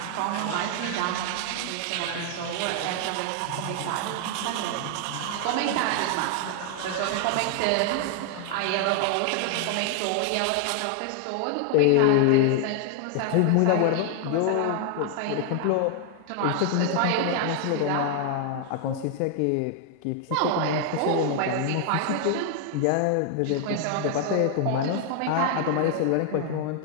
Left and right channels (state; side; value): different; both; correlation 0.00